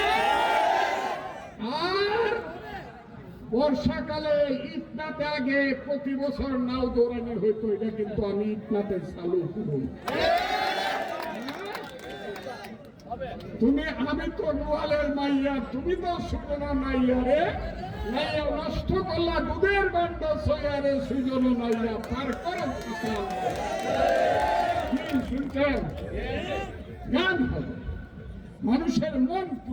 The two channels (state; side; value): identical; both; correlation 1.00